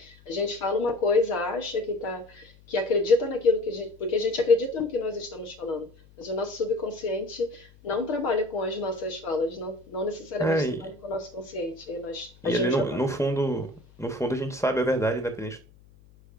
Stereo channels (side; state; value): left; noise; hum, 26 dB below the sound